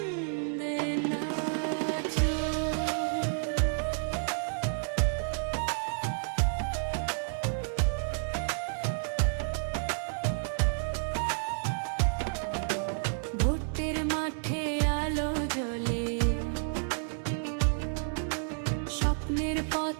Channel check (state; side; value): silent; left; 57 dB below the other